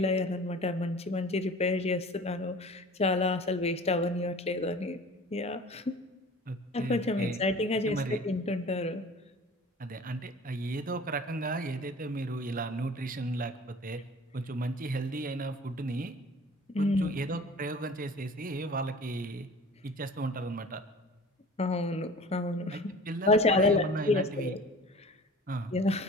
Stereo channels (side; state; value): both; normal; correlation 0.43